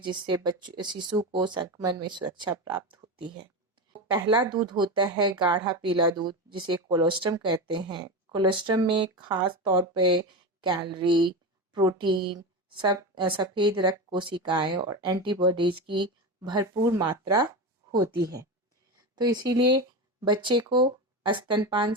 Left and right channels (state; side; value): normal; both; correlation 0.20